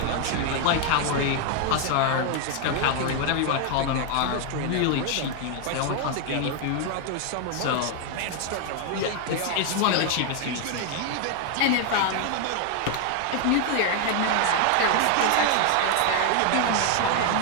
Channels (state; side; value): different; both; correlation 0.00